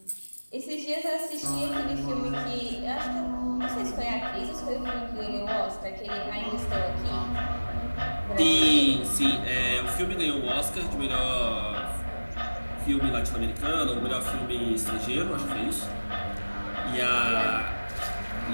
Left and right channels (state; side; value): inverted; both; correlation -1.00